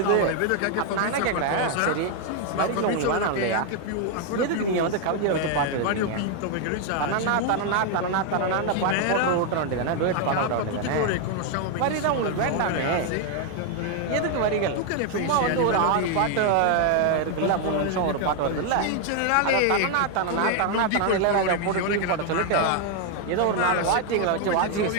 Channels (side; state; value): both; different; correlation 0.00